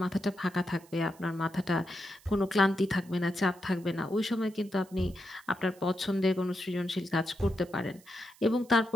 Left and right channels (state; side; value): noise; right; hiss, 26 dB below the sound